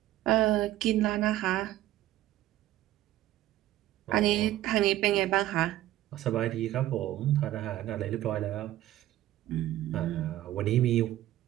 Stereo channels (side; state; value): left; quieter; 14.3 dB